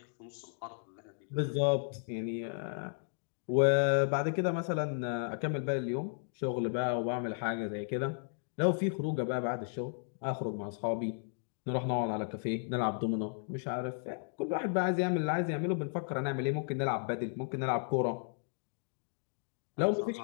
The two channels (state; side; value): silent; right; digital silence